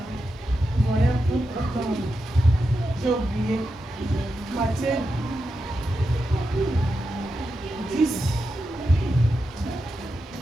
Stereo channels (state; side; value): normal; both; correlation 0.88